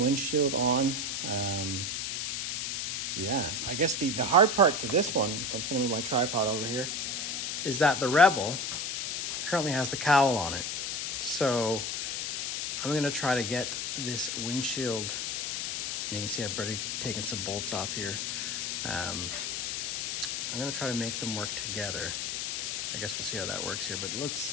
windshield on. Yeah, I guess the hard part to this one, so I'm just gonna move my tripod over here, is that the Rebel currently has the cowl on it. So I'm gonna try to get this windshield, and you can see I've already taken some bolts off here. I'm gonna try to make them work together. I guess we'll see how that works here, but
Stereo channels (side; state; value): left; noise; hiss, 1 dB below the sound